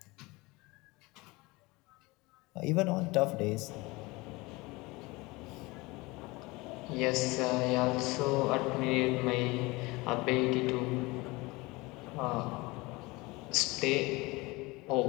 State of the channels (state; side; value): quieter; right; 23.2 dB